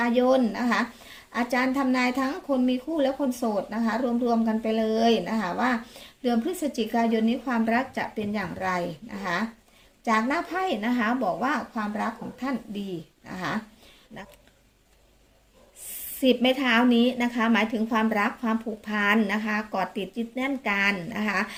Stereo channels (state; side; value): identical; both; correlation 1.00